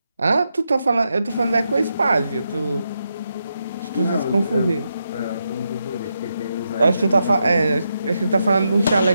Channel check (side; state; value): both; inverted; correlation -0.84